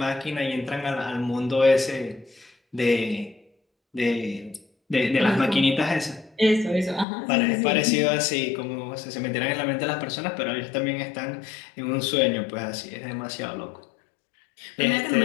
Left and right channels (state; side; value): drops out; right; at 7.1 s